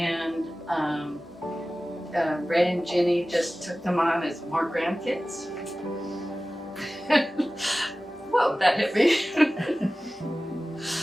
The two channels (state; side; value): normal; both; correlation 0.97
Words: Ray and Ginny just took them on as more grandkids. Whoa, that hit me.